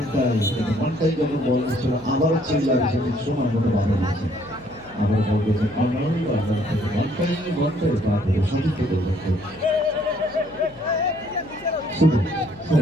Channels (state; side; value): noise; left; hum, 24 dB below the sound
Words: আবারও চিল্লার সময় মতো বাধা দিয়েছে। আবার বল করেছে সঠিক